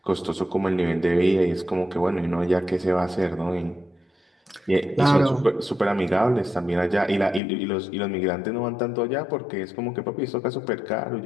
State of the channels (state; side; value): drops out; right; at 7.4 s